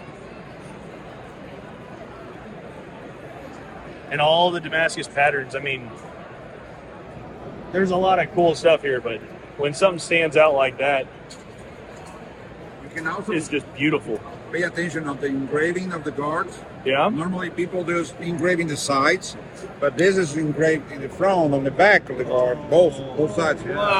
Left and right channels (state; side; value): identical; both; correlation 1.00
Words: And all the Damascus patterns, I mean, there's a lot of cool stuff here, but when something stands out like that, You can also it's just beautiful. pay attention on the engraving of the guards. Yeah? Normally people do is engraving the sides, but this is engraved in the front, on the back of the guard, both sides.